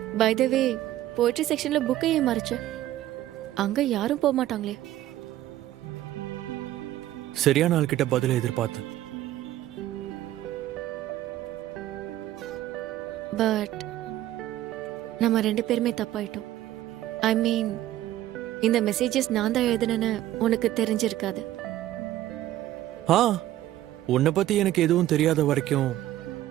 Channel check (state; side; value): quieter; left; 13.9 dB